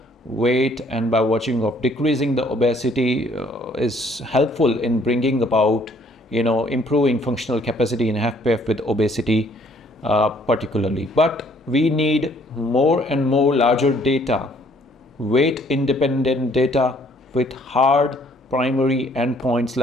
weight and by virtue of decreasing the obesity, is helpful in bringing about, improving functional capacity in HFpEF with obesity particularly. But we need more and more larger data, weight independent data with hard primary endpoints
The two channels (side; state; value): both; normal; correlation 0.62